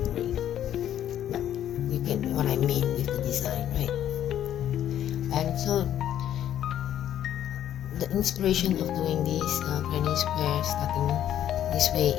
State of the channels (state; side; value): quieter; right; 11.0 dB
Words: but you get what I mean with the design, right? And so the inspiration of doing this granny square starting this way